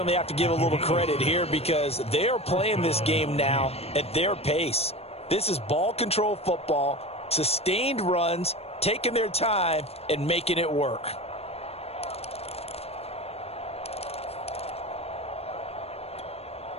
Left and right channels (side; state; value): right; late; 0.29 ms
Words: have to give a little credit here because they're playing this game now at their pace. This is ball control football, sustained runs, taking their time, and making it work.